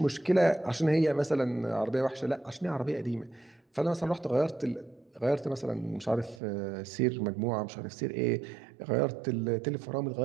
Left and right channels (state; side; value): drops out; left; at 6.4 s